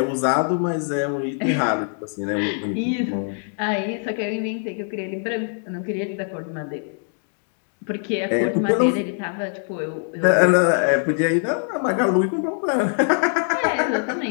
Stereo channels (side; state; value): right; silent; 55 dB below the other